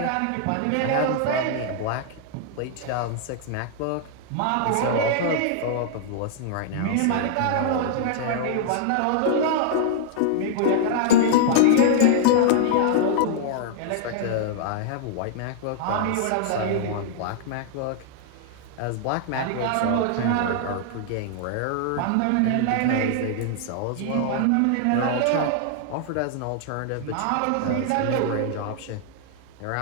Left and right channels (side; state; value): both; different; correlation -0.01